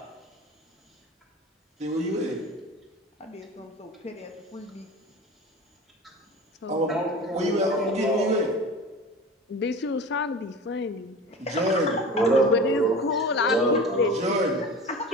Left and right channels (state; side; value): normal; both; correlation 0.35